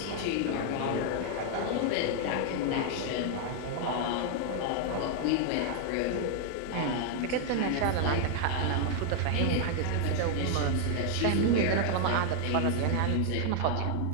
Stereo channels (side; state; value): both; different; correlation 0.00